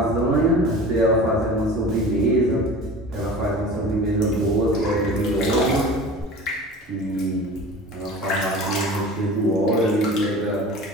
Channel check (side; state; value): both; normal; correlation 0.38